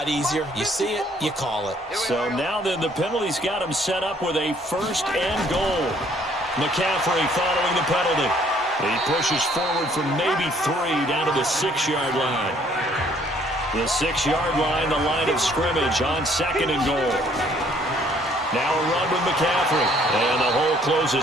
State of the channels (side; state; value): both; normal; correlation 0.62